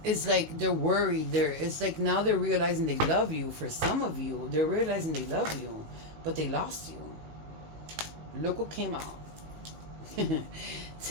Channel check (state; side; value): late; left; 19 ms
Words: they're worried. It's like now they're realizing they love you. For some of you, they're realizing they love you, but they lost you. Look what came out.